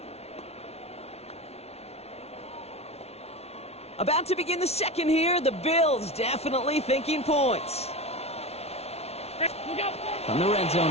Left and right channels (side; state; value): right; late; 0.31 ms